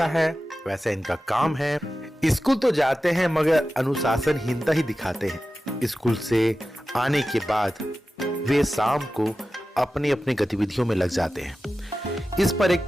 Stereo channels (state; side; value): normal; both; correlation 0.94